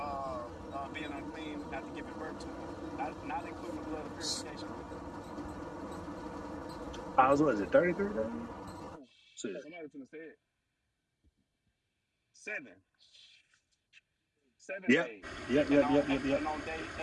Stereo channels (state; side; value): identical; both; correlation 1.00